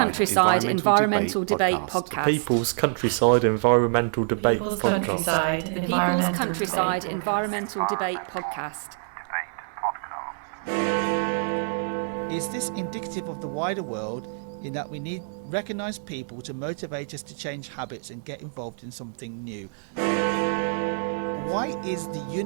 Environmental Debate Podcast. People's Countryside Environmental Debate Podcast. People's Countryside Environmental Debate Podcast. Is this indicative of the wider world in that we need recognised people to motivate us to change habits and get involved in something new? Why is the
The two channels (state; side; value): silent; left; digital silence